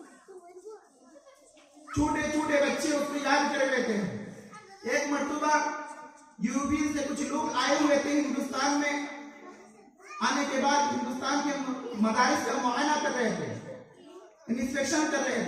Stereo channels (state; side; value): identical; both; correlation 1.00